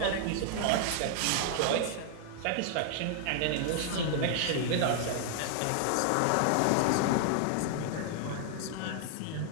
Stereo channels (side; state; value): both; different; correlation -0.01